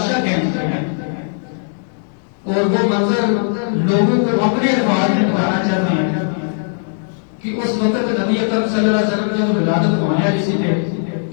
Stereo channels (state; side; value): silent; right; 65 dB below the other